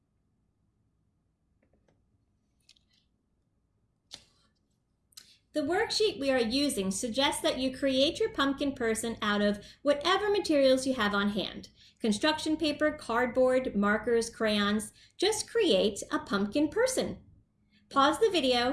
The worksheet we are using suggests that you create your pumpkin person out of whatever materials you have on hand. Construction paper, cardboard, markers, crayons. Just create a pumpkin person. Pause the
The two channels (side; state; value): both; identical; correlation 1.00